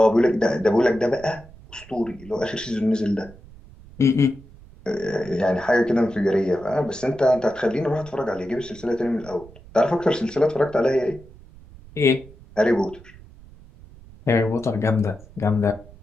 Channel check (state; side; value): noise; right; rumble, 21 dB below the sound